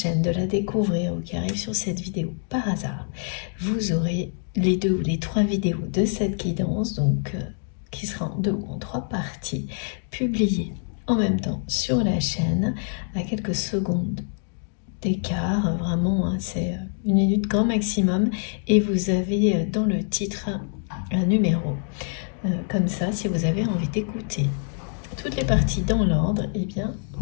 de la découvrir ou qui arrivent sur cette vidéo par hasard, vous aurez les 2 ou les 3 vidéos de cette guidance, donc qui sera en 2 ou en 3 parties, publiées en même temps sur la chaîne à quelques secondes d'écart, vraiment, hein, c'est 1 minute grand maximum, et vous avez dans le titre un numéro. Comme ça, si vous avez envie d'écouter toutes les parties dans l'ordre, eh bien,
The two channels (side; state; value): right; silent; 56 dB below the other